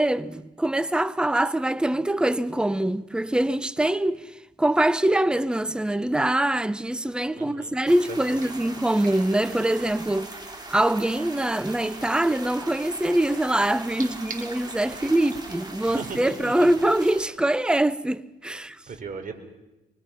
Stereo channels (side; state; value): both; normal; correlation 0.93